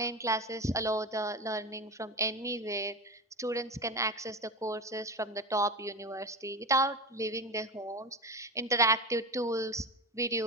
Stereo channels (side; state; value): both; normal; correlation 0.23